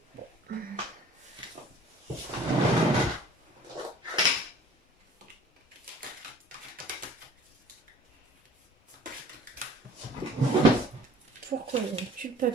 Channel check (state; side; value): normal; both; correlation 0.50